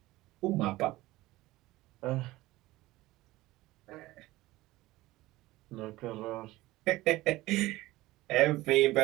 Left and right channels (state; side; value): quieter; left; 18.3 dB